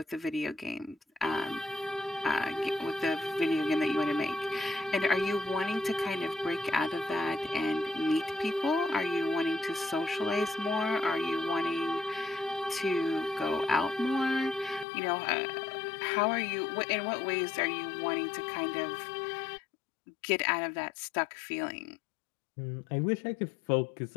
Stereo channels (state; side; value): drops out; right; at 14.9 s